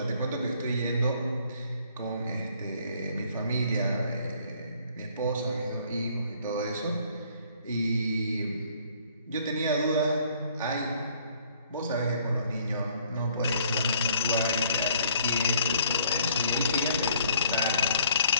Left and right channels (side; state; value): both; inverted; correlation -0.60